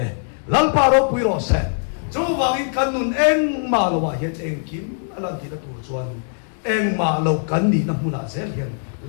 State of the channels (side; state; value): right; silent; 65 dB below the other